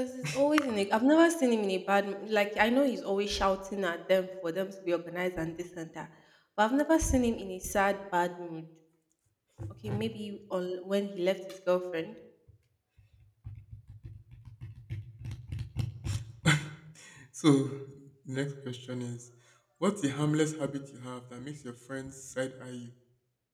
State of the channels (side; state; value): both; identical; correlation 1.00